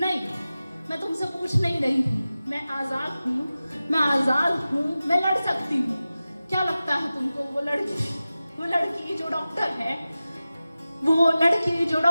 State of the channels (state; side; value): inverted; both; correlation -0.95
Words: मैं तुमसे पूछ नहीं रही हूँ। मैं आजाद हूँ, मैं आजाद हूँ, मैं लड़ सकती हूँ। क्या लगता है तुमको वो लड़की जो डॉक्टर है, वो लड़की जो